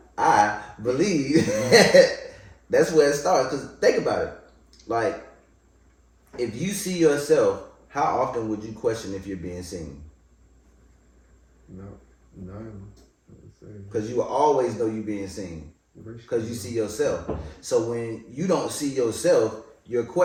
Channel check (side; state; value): both; identical; correlation 1.00